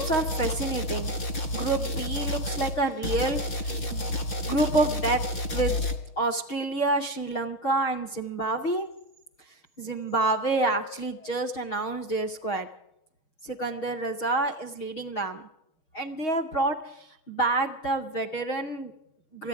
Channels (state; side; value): late; right; 6.4 ms